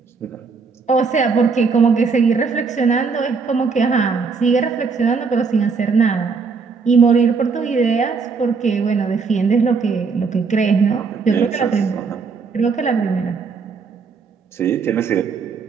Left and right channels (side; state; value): left; quieter; 5.0 dB